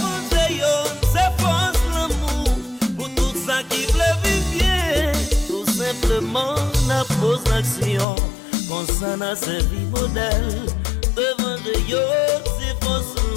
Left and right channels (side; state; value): right; drops out; at 8.1 s